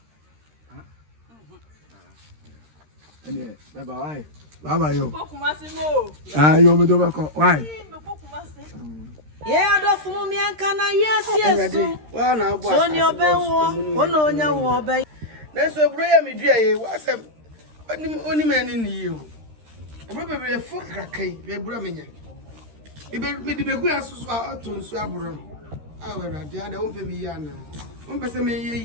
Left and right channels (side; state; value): left; late; 13 ms